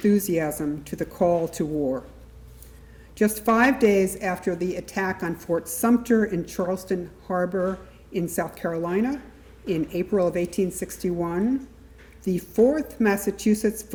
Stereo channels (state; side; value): identical; both; correlation 1.00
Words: to the call to war. Just 5 days after the attack on Fort Sumter in Charleston Harbor in South Carolina in April of 1861, the 4th Massachusetts